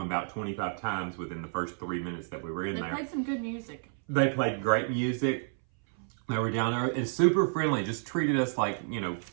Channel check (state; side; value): silent; left; 58 dB below the other